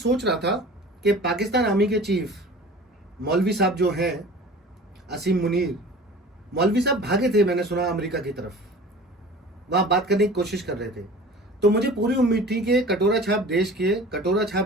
रहा था कि पाकिस्तान आर्मी के चीफ मौलवी साहब जो हैं, असीम मुनीर मौलवी साहब भागे थे, मैंने सुना अमेरिका की तरफ, वहां बात करने की कोशिश कर रहे थे। तो मुझे पूरी उम्मीद थी कि कटोरा छाप देश के कटोरा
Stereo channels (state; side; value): normal; both; correlation 0.41